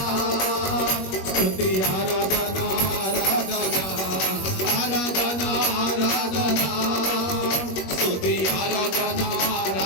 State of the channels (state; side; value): late; right; 21 ms